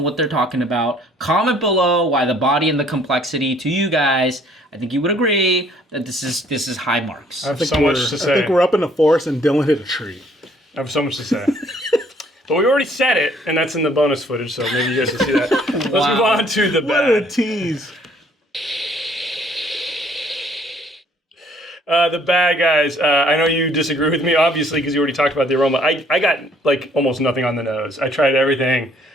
they're talking about. Comment below why the body and the complexity to you guys. I think you would agree that this is high marks. I have so much to say. I think we're up in the forest and Dylan hit a tree. I have so much to say. But we already said it, and that's in the bonus footage, so maybe you guys will see that. Let's move on to the bad. What a tease. The bad guys, I know you disagree with me, obviously, because you already talked about the aroma. I got, almost nothing on the nose. I tried everything.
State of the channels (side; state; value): both; normal; correlation 0.61